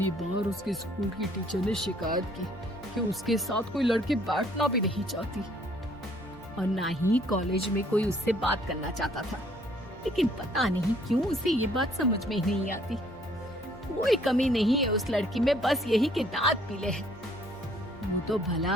बार उसके स्कूल की टीचर ने शिकायत की कि उसके साथ कोई लड़की बैठना भी नहीं चाहती, और ना ही कॉलेज में कोई उससे बात करना चाहता था। लेकिन पता नहीं क्यों उसे ये बात समझ में ही नहीं आती। कोई कमी नहीं है उस लड़की में, बस यही कि दांत पीले हैं। वो तो भला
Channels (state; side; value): normal; both; correlation 0.62